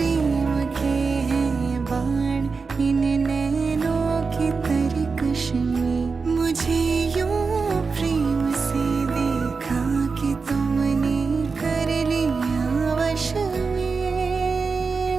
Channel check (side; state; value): left; quieter; 4.7 dB